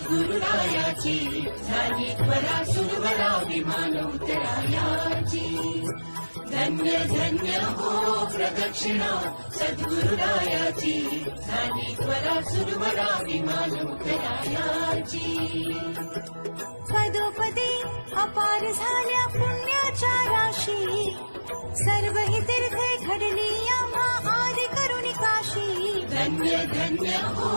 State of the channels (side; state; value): both; inverted; correlation -1.00